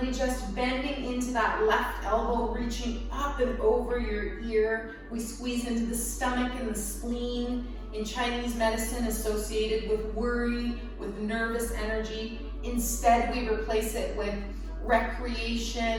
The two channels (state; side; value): identical; both; correlation 1.00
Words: just bending into that left elbow, reaching up and over your ear. We squeeze into the stomach and the spleen. In Chinese medicine, associated with worry, with nervous energy. Instead, we replace it with